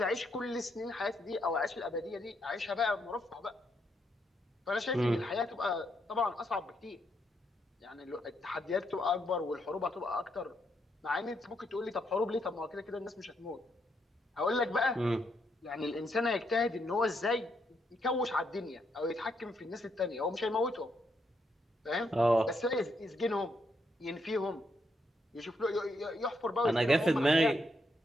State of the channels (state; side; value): normal; both; correlation 0.78